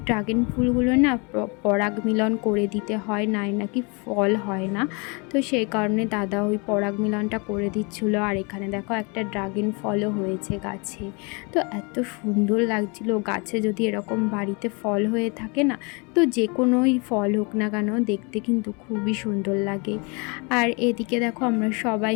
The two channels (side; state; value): right; quieter; 31.2 dB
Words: ড্রাগন ফুলগুলো না পরাগ মিলন করে দিতে হয়, নাকি ফল হয় না। তো সেই কারণে দাদা ওই পরাগ মিলনটা করে দিচ্ছিলো। আর এখানে দেখো একটা ড্রাগন ফলও হয়েছে গাছে। তো এত সুন্দর লাগছিল, গাছে যদি এরকম বাড়িতে ফল হয়ে থাকে না, তো যে কোনোই ফল হোক না কেন দেখতে কিন্তু খুবই সুন্দর লাগে। আর এদিকে দেখো আমরা সবাই